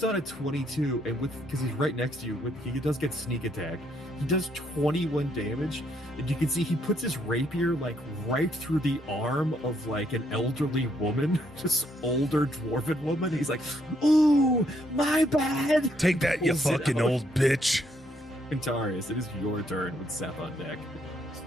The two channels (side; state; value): both; normal; correlation 0.72